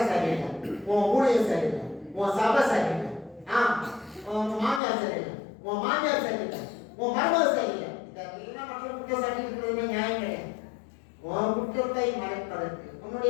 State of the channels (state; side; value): drops out; right; at 4.8 s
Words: சரியில்லை, உன் ஊழியம் சரியில்லை, உன் சபை சரியில்லை, உன் மாமியார் சரியில்லை, உன் மாமியார் சரியில்லை, உன் மருமக சரியில்லை. இதெல்லாம் மற்ற குற்றம் சாட்டி இருக்கிறது நியாயம் கிடையாது. உன் குற்றத்தை மறைப்பதற்கு,